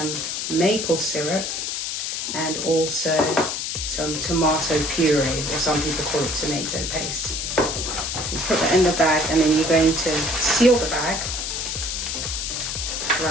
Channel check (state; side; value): noise; left; hiss, 3 dB below the sound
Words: maple syrup, and also some tomato puree, or some people call it tomato paste. You put that in the bag, and then you're going to seal the bag